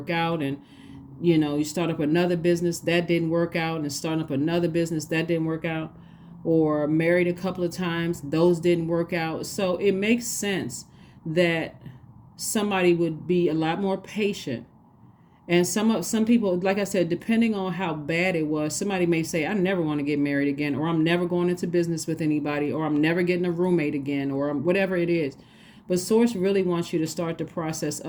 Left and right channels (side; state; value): both; identical; correlation 1.00